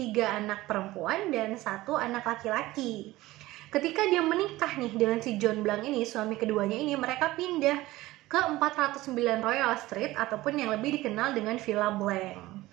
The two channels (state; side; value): quieter; left; 17.9 dB